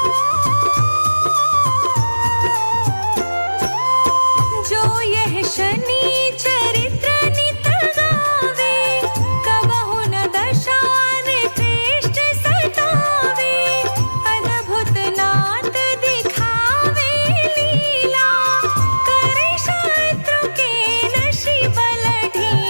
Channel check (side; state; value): both; inverted; correlation -1.00